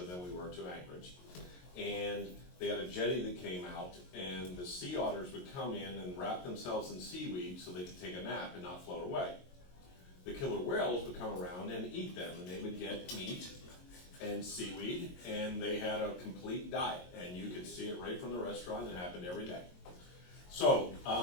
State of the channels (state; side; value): late; right; 22 ms